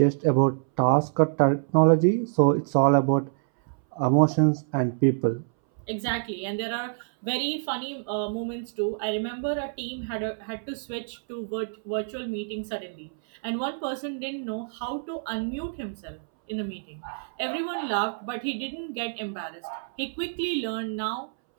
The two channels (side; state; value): left; silent; 60 dB below the other